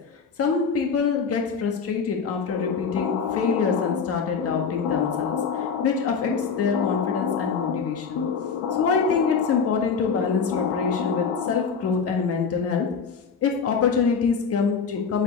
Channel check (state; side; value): quieter; right; 5.8 dB